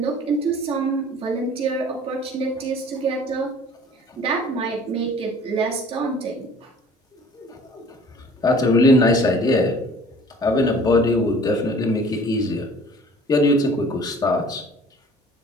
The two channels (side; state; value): both; normal; correlation 0.49